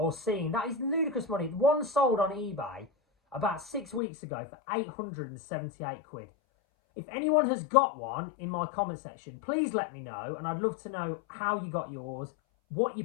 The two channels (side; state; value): right; drops out; at 4.0 s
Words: seeing? That is ludicrous money. One sold on eBay about 6 weeks ago for 878 quid. If anyone has got one in my comment section, please let me know, and I'd love to know how you got yours, what you